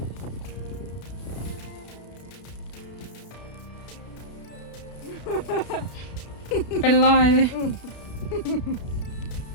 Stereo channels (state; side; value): late; right; 32 ms